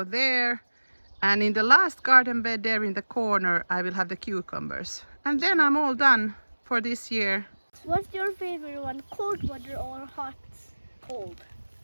there, and in the last garden bed there in the corner I will have the cucumbers. And then I'm all done for this year. What's your favorite one, cold water or hot? Cold.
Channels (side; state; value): both; inverted; correlation -1.00